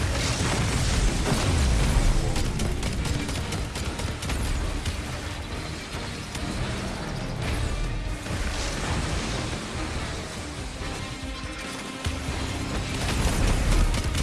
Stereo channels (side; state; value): both; identical; correlation 1.00